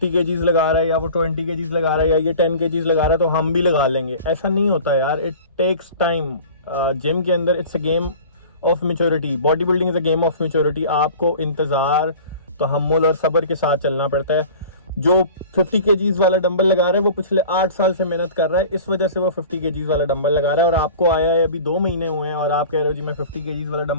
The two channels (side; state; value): both; inverted; correlation -0.41